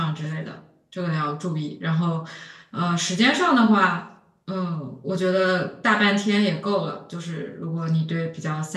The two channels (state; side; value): identical; both; correlation 1.00